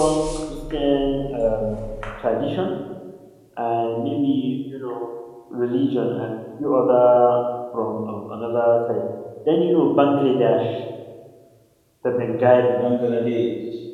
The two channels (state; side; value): identical; both; correlation 1.00